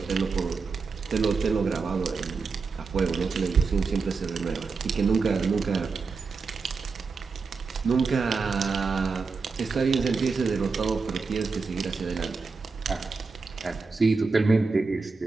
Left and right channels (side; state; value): left; quieter; 4.6 dB